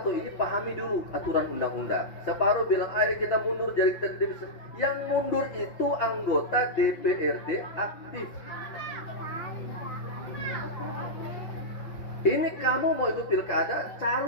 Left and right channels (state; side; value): late; right; 5.9 ms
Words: ini pahami dulu aturan undang-undang. Separuh bilang ayo kita mundur jadi kita bisa. Yang mundur itu anggota DPRD aktif. Ini kamu mau ikut pilkada,